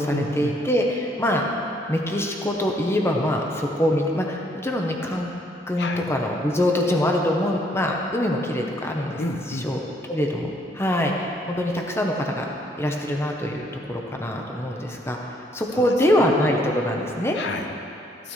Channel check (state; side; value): normal; both; correlation 0.68